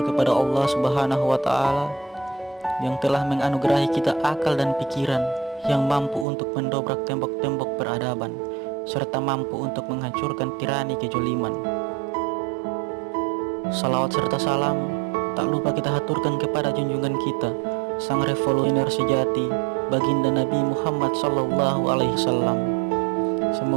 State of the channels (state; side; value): drops out; left; at 6.2 s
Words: Allah subhanahu wa ta'ala yang telah menganugerahi kita akal dan pikiran yang mampu untuk mendobrak tembok-tembok peradaban serta mampu untuk menghancurkan tirani kejoliman. Salawat serta salam tak lupa kita haturkan kepada junjungan kita, sang revolusioner sejati, baginda Nabi Muhammad sallallahu alaihi wasallam.